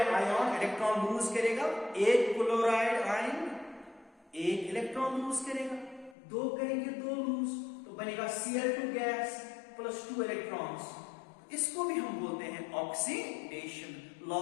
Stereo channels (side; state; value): right; drops out; at 6.2 s